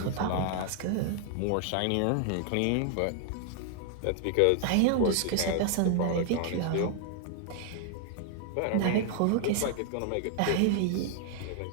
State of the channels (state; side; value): different; both; correlation 0.00